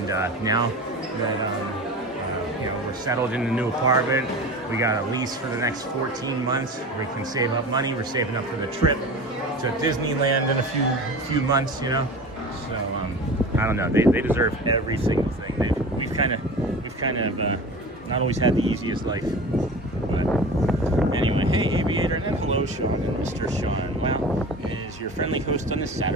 now that you know, we're settled in the new apartment, we got a lease for the next 14 months. We can save up money. We're saving up for the trip to Disneyland in a few months, you know. So I don't know. They deserve every single thing. We've kind of not always had the easiest life. But anyway, hey Aviator, and then hello Sean and Mr. Sean. Wow, is your friendly host on this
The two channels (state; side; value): normal; both; correlation 0.34